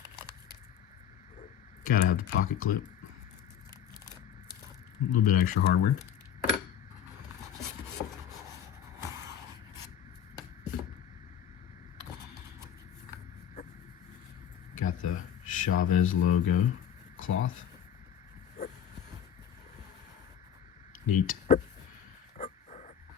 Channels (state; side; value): quieter; right; 9.4 dB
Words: Gotta have the pocket clip. A little bit extra hardware. Got the Chaves logo cloth. Neat.